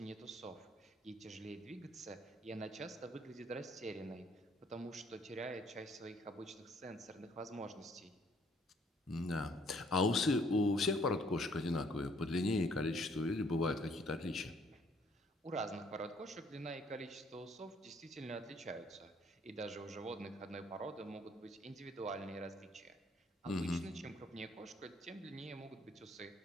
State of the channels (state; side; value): normal; both; correlation 0.63